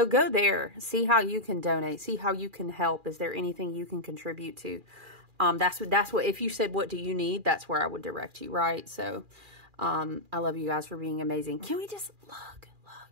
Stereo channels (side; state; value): left; late; 2.4 ms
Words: go there. See how you can donate. See how you can help. Is there anything you can contribute to? That's what, if you said, what do you need? That's where I would direct you, right? So, I love you guys for being amazing. Can we just look?